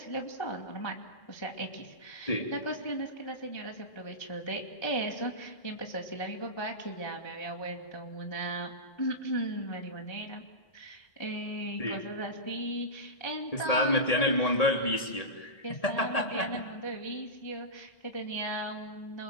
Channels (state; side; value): late; right; 1.8 ms